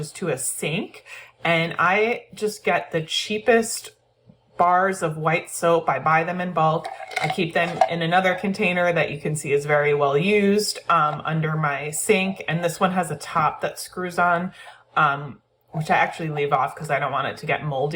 to a sink, and I just get the cheapest bars of white soap. I buy them in bulk. I keep them in another container that you can see is very well used under my sink, and this one has a top that screws on, which I actually leave off because I don't want it to get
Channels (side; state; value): both; identical; correlation 1.00